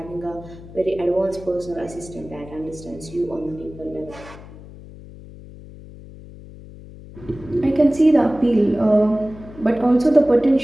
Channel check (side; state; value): left; noise; hum, 17 dB below the sound